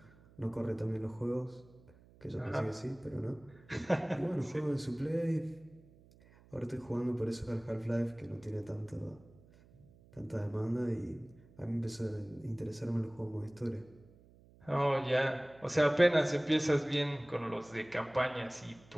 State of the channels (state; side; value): noise; right; hum, 25 dB below the sound